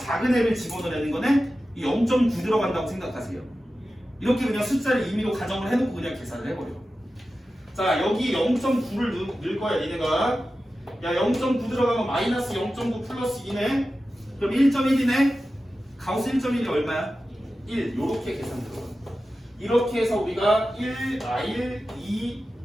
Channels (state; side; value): normal; both; correlation 0.93